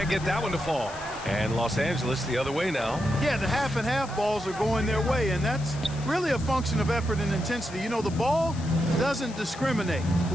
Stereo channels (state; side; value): noise; left; hiss, 17 dB below the sound